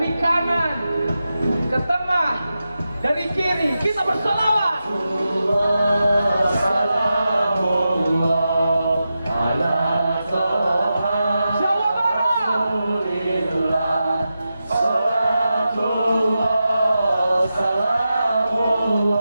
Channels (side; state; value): both; inverted; correlation -0.90